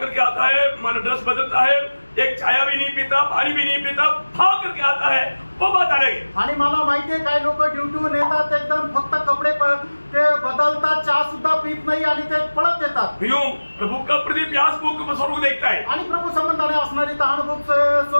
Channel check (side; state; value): both; inverted; correlation -1.00